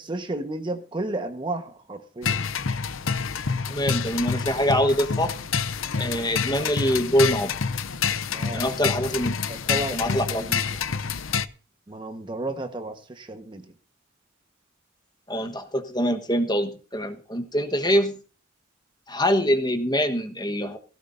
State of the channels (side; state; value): both; normal; correlation 0.53